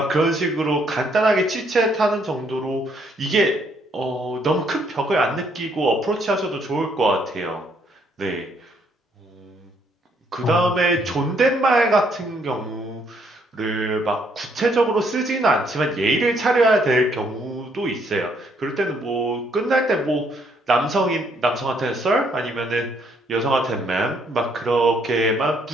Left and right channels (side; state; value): both; normal; correlation 0.69